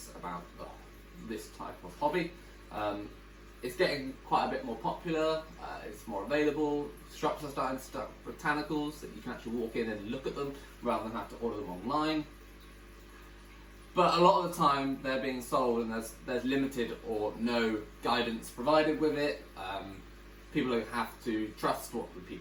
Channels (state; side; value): identical; both; correlation 1.00